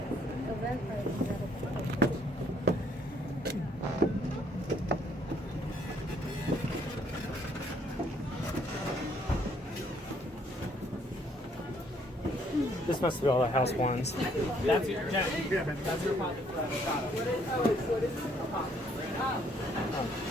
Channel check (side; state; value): both; normal; correlation 0.66